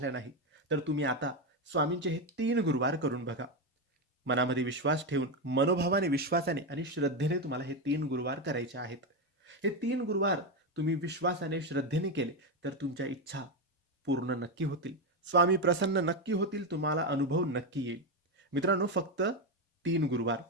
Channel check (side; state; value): both; normal; correlation 0.10